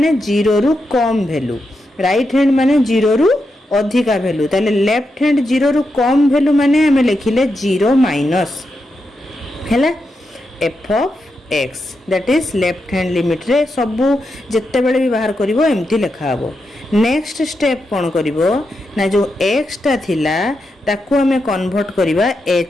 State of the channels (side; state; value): both; normal; correlation 0.86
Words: 0 रु कम वैल्यू राइट हैंड माने 0 रु अधिका वैल्यू ताले लेफ्ट हैंड 0 रु कम वैल्यू माने हमें लिखिले 0 माइनस हैला f of x that is left hand limit रे सबु जत्ते बेले भी बाहर करिवो एम्ति लिखा हबो नेक्स्ट स्टेप कौन करिवो ना जो x टा थिला ताकू हमें कन्वर्ट करिवा